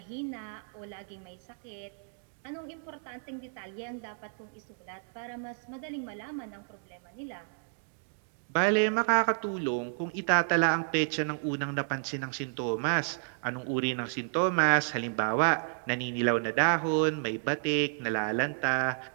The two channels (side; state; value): left; silent; digital silence